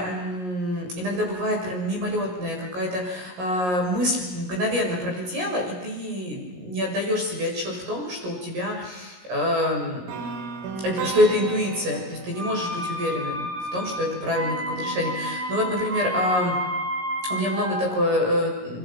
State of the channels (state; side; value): late; left; 17 ms